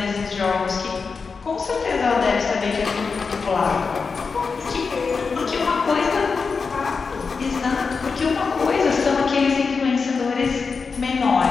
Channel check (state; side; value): quieter; right; 5.0 dB